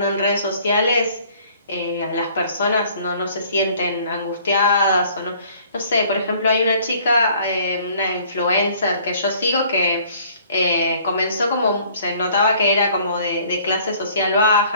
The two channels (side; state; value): both; inverted; correlation -0.56